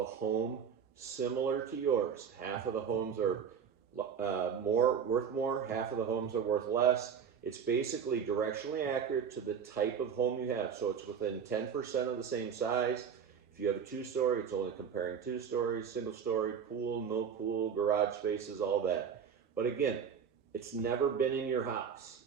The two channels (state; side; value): quieter; left; 7.3 dB